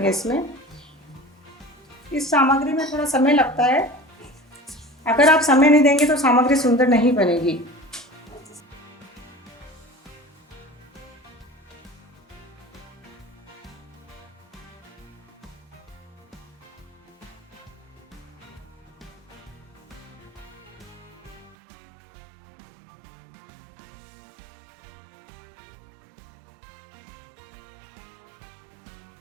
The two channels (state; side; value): drops out; left; at 21.6 s